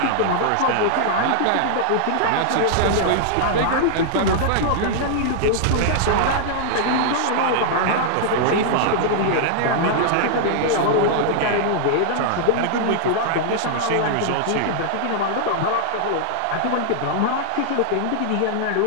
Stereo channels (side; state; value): both; different; correlation -0.01